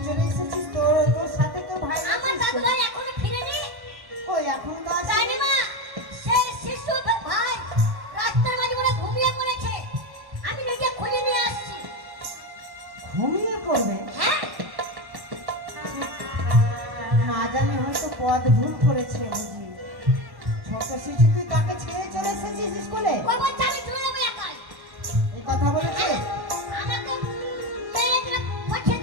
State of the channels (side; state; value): left; late; 1.1 ms